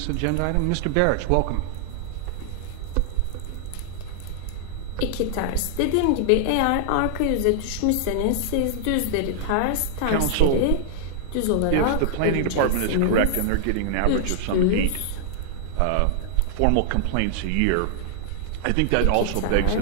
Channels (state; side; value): different; both; correlation -0.01